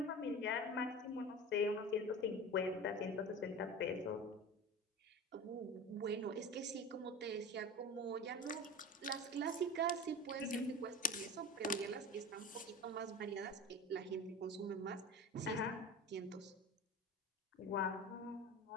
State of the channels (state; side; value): normal; both; correlation 0.32